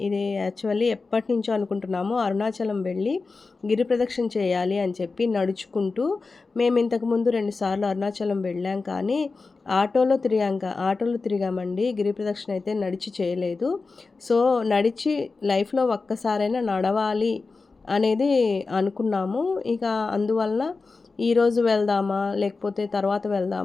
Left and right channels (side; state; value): right; quieter; 4.1 dB